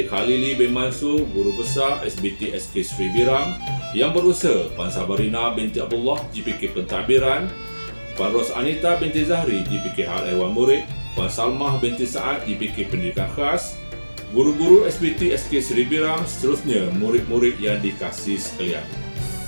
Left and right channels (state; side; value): inverted; both; correlation -1.00